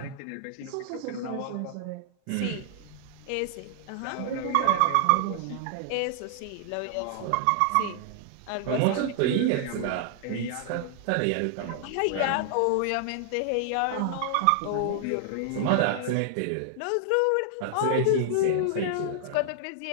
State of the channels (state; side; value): different; both; correlation 0.00